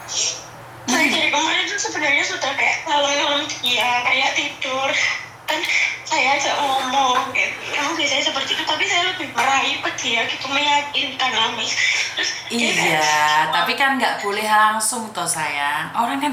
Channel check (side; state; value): both; identical; correlation 1.00